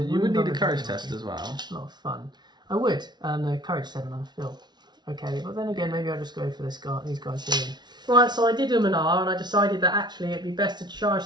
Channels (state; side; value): late; left; 0.20 ms